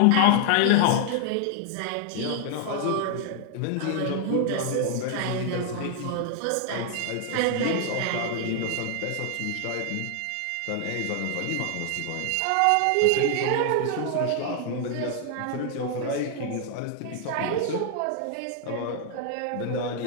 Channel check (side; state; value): both; different; correlation 0.00